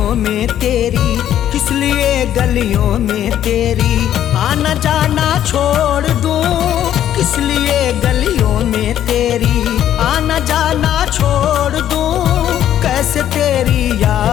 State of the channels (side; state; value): right; quieter; 11.1 dB